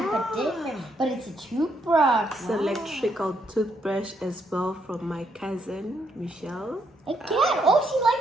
but different. But it's a toothbrush. It's an electrical toothbrush as well from my cousin Michelle. Again, she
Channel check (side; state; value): both; normal; correlation 0.75